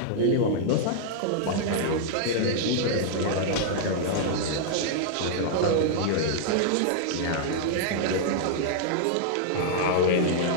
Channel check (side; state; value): both; different; correlation -0.01